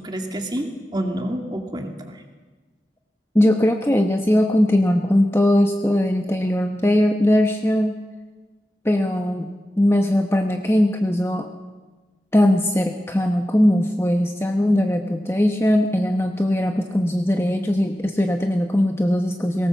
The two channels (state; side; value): normal; both; correlation 0.93